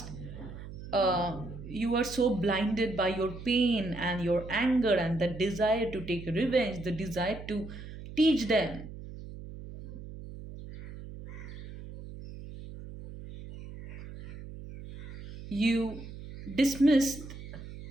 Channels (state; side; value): noise; right; hum, 12 dB below the sound